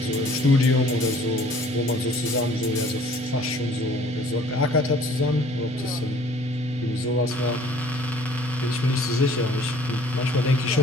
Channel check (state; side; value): normal; both; correlation 0.54